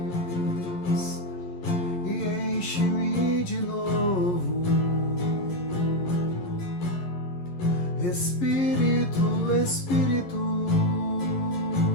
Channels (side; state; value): right; late; 11 ms